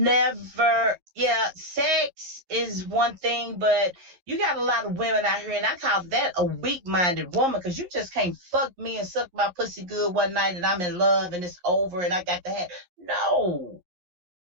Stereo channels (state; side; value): late; left; 11 ms